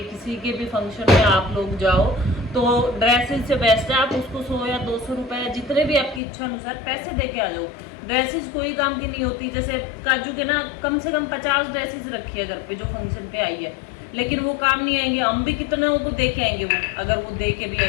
किसी के भी फंक्शन में आप लोग जाओ तो ड्रेसेस से बेस्ट है आप उसको 100 या 200 रुपए जितने भी आपकी इच्छा अनुसार पैसे दे के आ जाओ। ड्रेसेस कोई काम की नहीं होती। जैसे काजू के ना कम से कम 50 ड्रेसेस रखी है घर पे जो फंक्शन पे आई है, लेकिन वो काम नहीं आएंगे। हम भी कितने को दे के आएंगे, वो अगर वो दे के भी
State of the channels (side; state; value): right; drops out; at 6.2 s